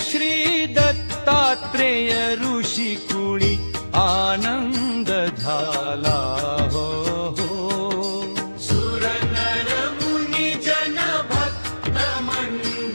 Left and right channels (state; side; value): inverted; both; correlation -1.00